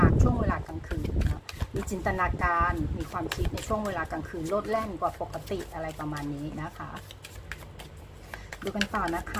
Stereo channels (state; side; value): identical; both; correlation 1.00